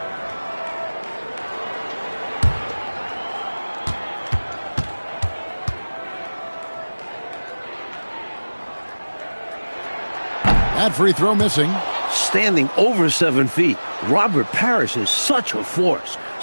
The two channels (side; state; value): both; inverted; correlation -1.00